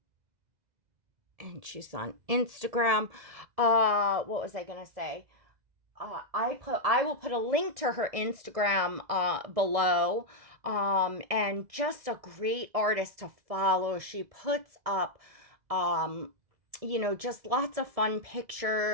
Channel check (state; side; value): late; left; 2.0 ms